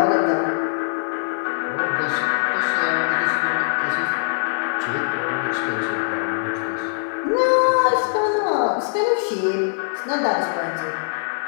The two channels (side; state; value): right; silent; digital silence